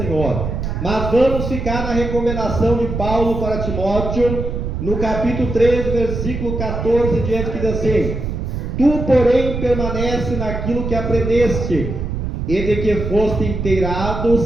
Mas vamos ficar na recomendação de Paulo para Timóteo, no capítulo 13, versículo 14 diante, que diz assim: tu, porém, permanece naquilo que aprendeste, e de que foste inteirado,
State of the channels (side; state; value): right; noise; rumble, 4 dB below the sound